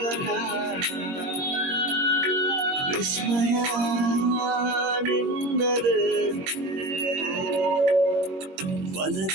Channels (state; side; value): late; left; 21 ms